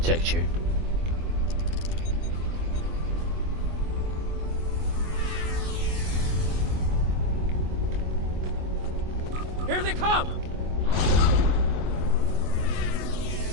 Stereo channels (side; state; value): left; late; 24 ms